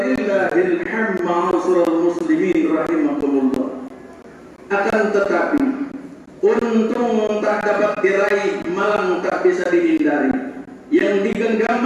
hamd. Ma'asyiral muslimin rahimakumullah. Akan tetapi, untung tak dapat diraih, malang tak bisa dihindari. Yang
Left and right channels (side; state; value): both; identical; correlation 1.00